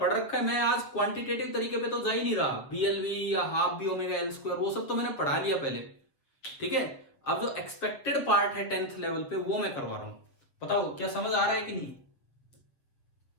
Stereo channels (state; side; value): late; right; 7.5 ms